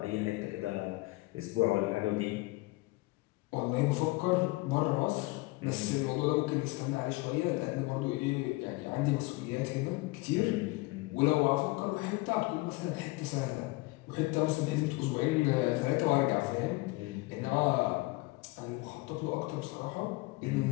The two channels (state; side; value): quieter; right; 22.9 dB